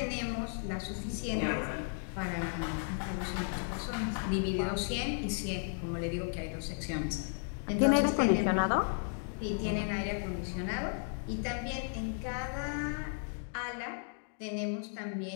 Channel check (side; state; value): right; silent; 55 dB below the other